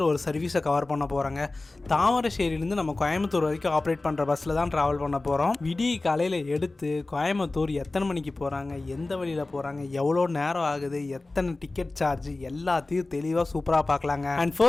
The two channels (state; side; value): quieter; right; 3.1 dB